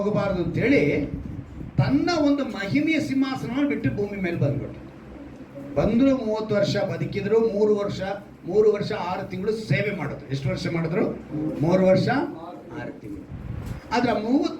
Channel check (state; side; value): identical; both; correlation 1.00